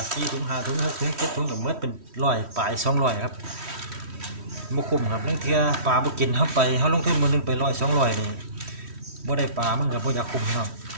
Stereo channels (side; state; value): left; late; 3.1 ms